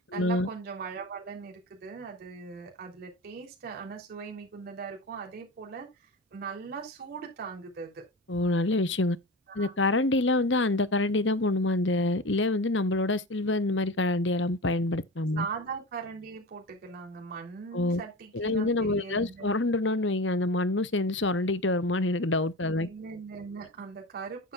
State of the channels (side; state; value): both; normal; correlation 0.28